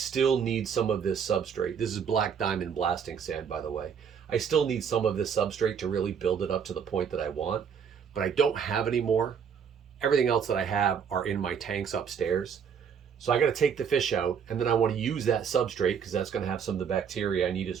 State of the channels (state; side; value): quieter; left; 7.2 dB